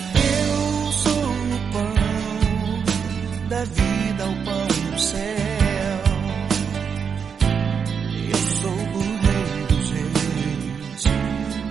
Eu sou o pão da vida, o pão do céu. Eu sou o Rei dos Reis,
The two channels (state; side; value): quieter; left; 6.6 dB